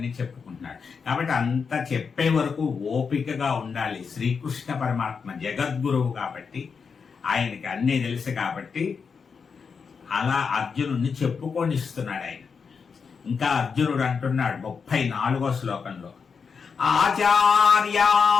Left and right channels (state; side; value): quieter; right; 5.7 dB